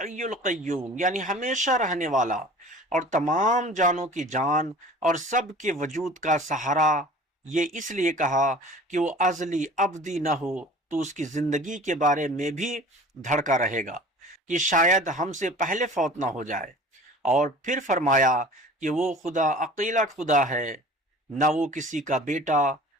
القیوم، یعنی ہمیشہ رہنے والا اور تمام جانوں کی جان اور سب کے وجود کا سہارا۔ یہ اس لیے کہا کہ وہ ازلی ابدی نہ ہو تو اس کی زندگی کے بارے میں بھی دھڑکا رہے گا کہ شاید ہم سے پہلے فوت نہ ہو جائے۔ اور پھر فرمایا کہ وہ خدا اکیلا خدا ہے، نہ وہ کسی کا بیٹا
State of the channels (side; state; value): both; normal; correlation 0.44